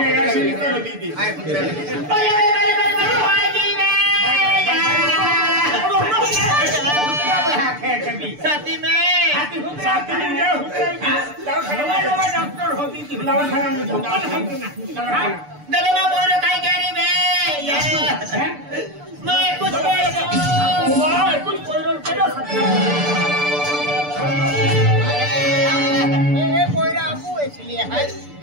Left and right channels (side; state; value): left; late; 6.8 ms